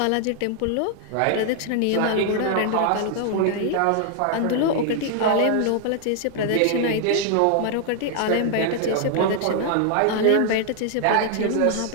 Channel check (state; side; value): different; both; correlation 0.00